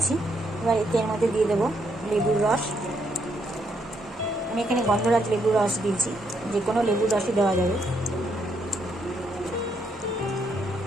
এবার এর মধ্যে দিয়ে দেবো লেবুর রস। আমি এখানে গন্ধরাজ লেবুর রস দিয়েছি, যে কোনো লেবুর রসই দেওয়া যাবে।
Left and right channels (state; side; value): normal; both; correlation 0.75